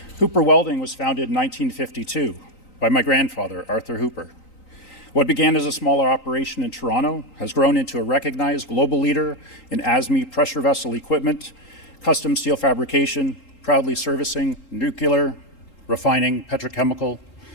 Hooper Welding was founded in 1952 by my grandfather, Arthur Hooper. What began as a smaller operation in Toronto has grown into a recognized global leader in ASME pressure vessel equipment, custom steel fabrication, proudly servicing nuclear, refining, petrochemical,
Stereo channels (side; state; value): right; late; 3.9 ms